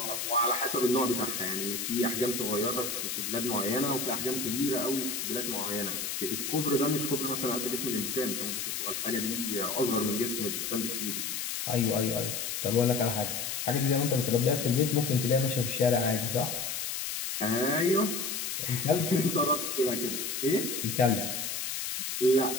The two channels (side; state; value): left; noise; hiss, 3 dB below the sound